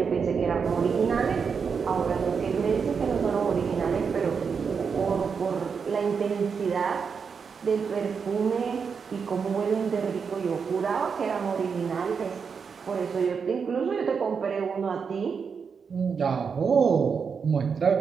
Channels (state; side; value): quieter; left; 6.0 dB